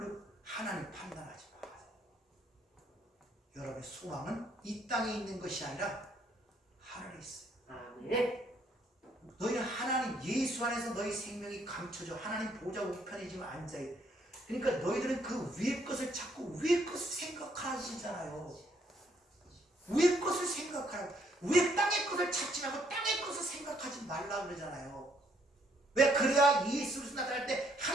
하나님 판단하지 마세요. 여러분의 소망은 이 땅에 있는 것이 아니라 하늘에 있어요. 아멘. 너희는 하나님 예수 안에서 너희 생명이 감춰져 하나님 보좌 우편에 지금 앉아있어. 그러니까 너희들은 그 위의 것을 찾고 위의 것을 생각하시잖아요. 위의 것을 생각하라고. 위의 땅의 것을 찾지 말고 땅의 것을 생각하지 말라 그러잖아요. 왜? 그래야 예수 그리스도 나타날 때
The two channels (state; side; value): normal; both; correlation 0.69